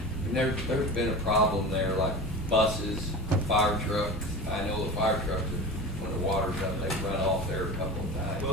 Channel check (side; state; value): both; normal; correlation 0.31